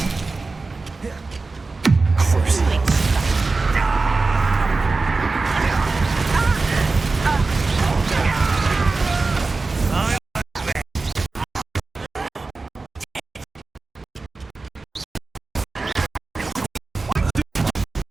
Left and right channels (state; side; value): quieter; left; 3.8 dB